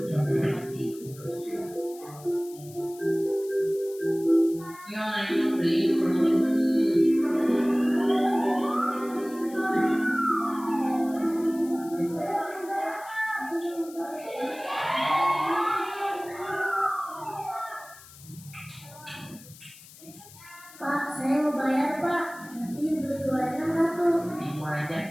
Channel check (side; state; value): left; noise; hiss, 20 dB below the sound